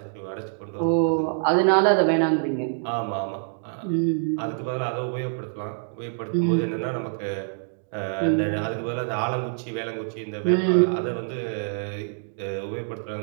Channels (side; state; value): left; silent; digital silence